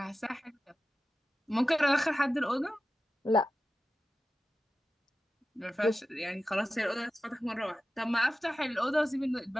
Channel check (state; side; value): normal; both; correlation 0.93